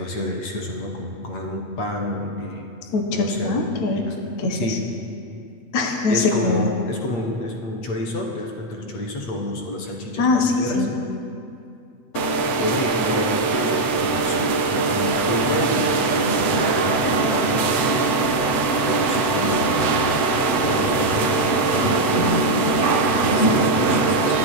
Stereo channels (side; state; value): right; late; 7.9 ms